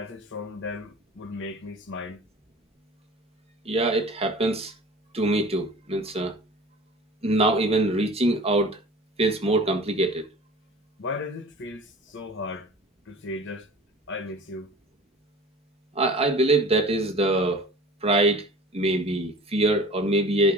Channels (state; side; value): normal; both; correlation 0.42